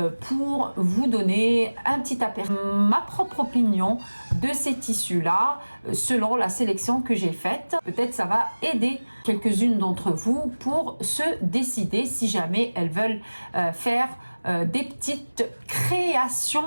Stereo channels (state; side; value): inverted; both; correlation -1.00